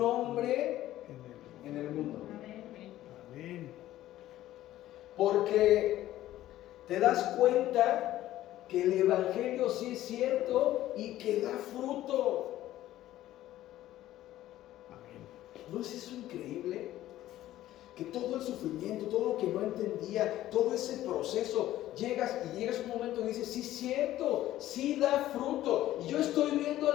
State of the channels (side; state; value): right; quieter; 14.1 dB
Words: en el mundo. Amén. Porque te das cuenta que el evangelio sí es cierto y que da fruto. ¿No es eso increíble? Que todo el sufrimiento, todo lo que no entendía, todo ese proceso, llegas un momento y dices, sí es cierto, sí da fruto. Y yo estoy viendo